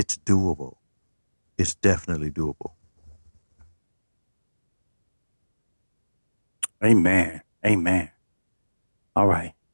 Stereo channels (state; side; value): inverted; both; correlation -1.00